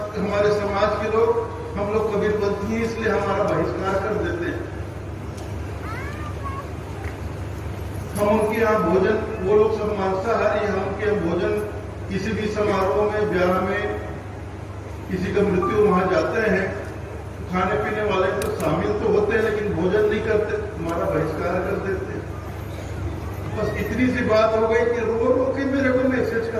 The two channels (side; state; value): both; identical; correlation 1.00